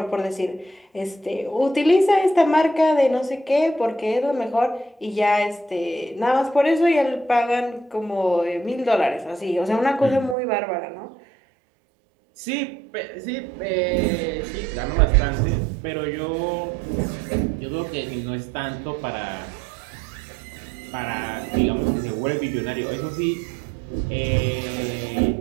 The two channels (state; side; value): drops out; left; at 10.4 s